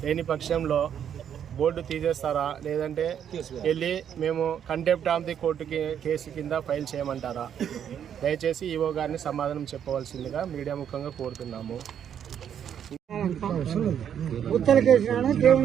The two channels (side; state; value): left; quieter; 8.9 dB